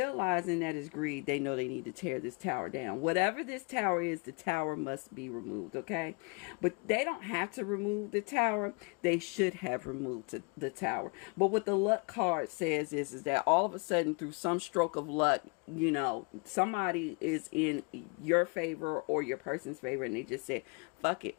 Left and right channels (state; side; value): quieter; right; 32.4 dB